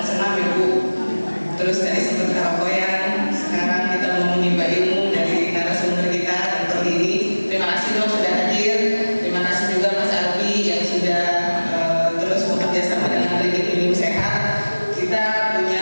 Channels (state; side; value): inverted; both; correlation -1.00